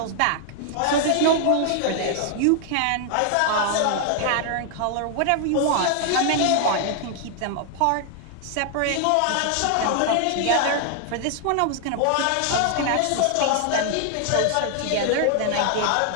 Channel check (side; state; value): both; different; correlation 0.00